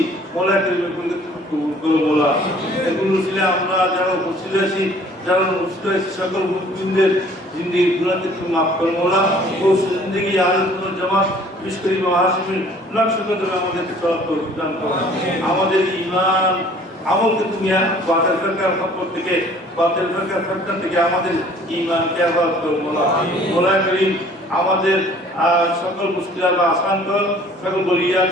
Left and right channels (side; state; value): both; normal; correlation 0.54